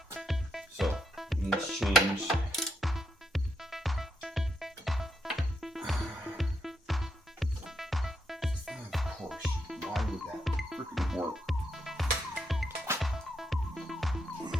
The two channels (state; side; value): normal; both; correlation 0.80